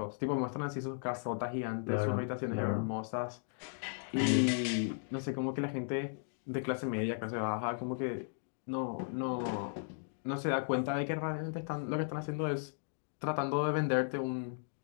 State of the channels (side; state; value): right; silent; digital silence